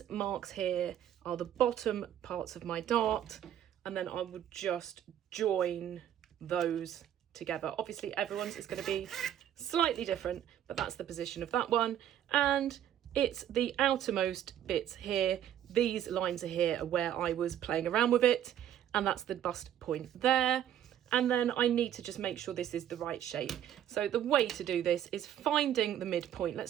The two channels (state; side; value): quieter; left; 10.7 dB